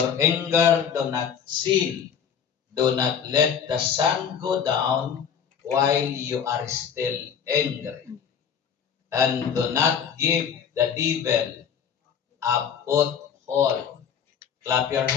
anger do not sin, do not let the sun go down while you are still angry. And do not give the devil a foothold. Clap your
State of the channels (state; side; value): quieter; right; 7.6 dB